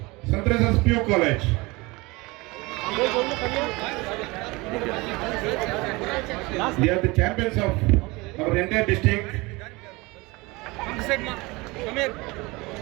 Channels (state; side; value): quieter; left; 23.9 dB